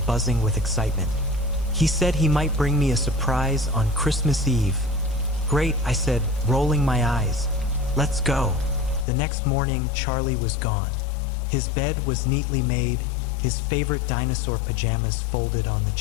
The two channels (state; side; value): drops out; right; at 9.1 s